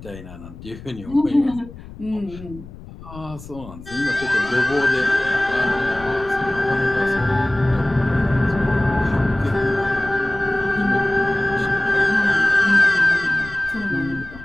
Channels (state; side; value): noise; left; rumble, 16 dB below the sound